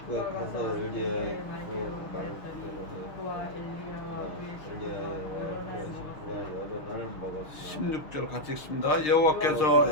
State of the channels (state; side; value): late; right; 6.5 ms